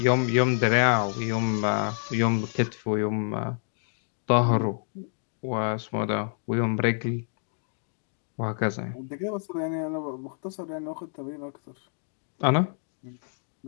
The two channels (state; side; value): silent; right; digital silence